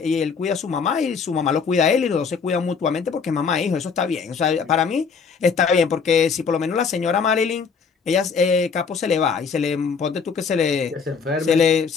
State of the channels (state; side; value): quieter; right; 5.7 dB